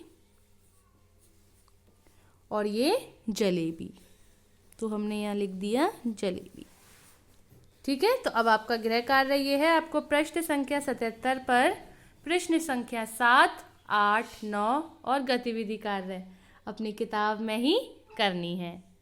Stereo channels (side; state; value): both; identical; correlation 1.00